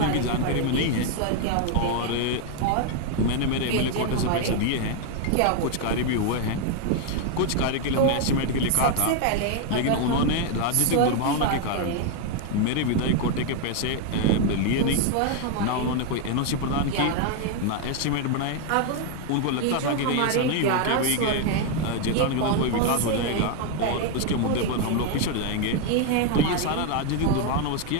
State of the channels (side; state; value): both; different; correlation 0.01